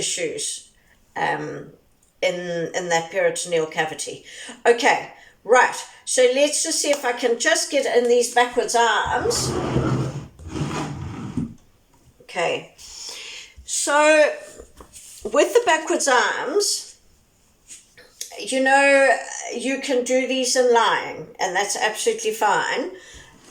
in that peritoneal cavity. Okay, right. So let's just see if I can just get in these backwards arms. Okay. So with the backwards arms, you know, you can do these in lying, and that's absolutely fine.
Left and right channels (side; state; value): both; identical; correlation 1.00